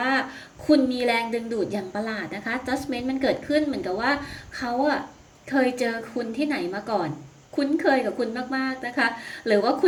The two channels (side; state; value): both; identical; correlation 1.00